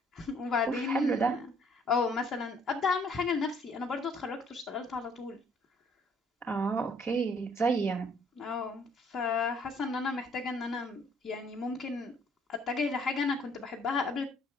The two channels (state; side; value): normal; both; correlation 0.62